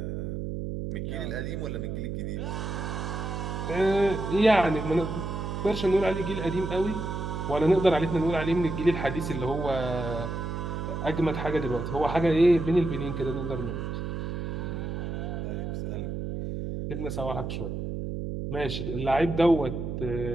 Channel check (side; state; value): right; noise; hum, 4 dB below the sound